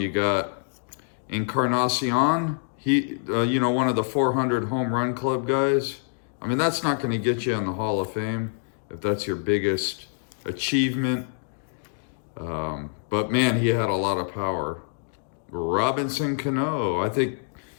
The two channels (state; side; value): silent; right; digital silence